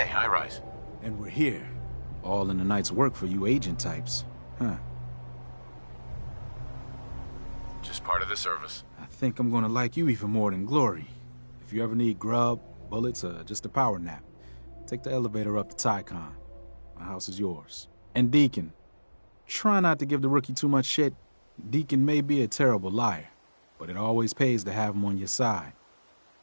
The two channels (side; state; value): both; inverted; correlation -1.00